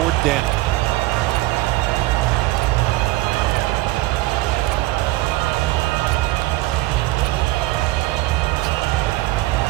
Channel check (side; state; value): left; quieter; 18.5 dB